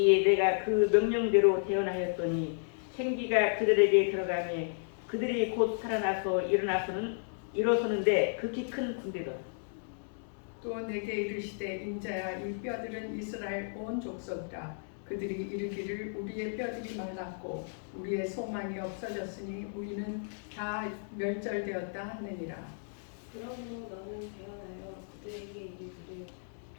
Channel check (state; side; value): silent; right; digital silence